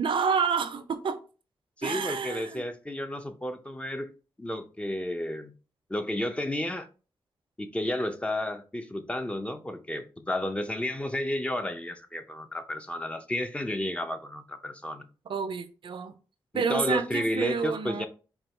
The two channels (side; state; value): both; normal; correlation 0.60